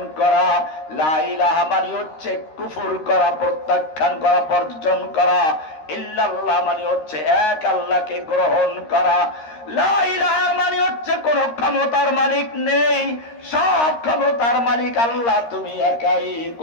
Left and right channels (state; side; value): late; right; 13 ms